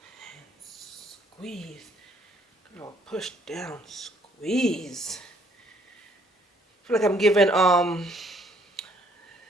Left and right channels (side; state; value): both; normal; correlation 0.65